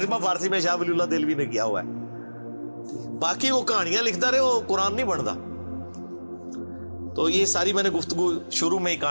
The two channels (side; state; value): both; inverted; correlation -1.00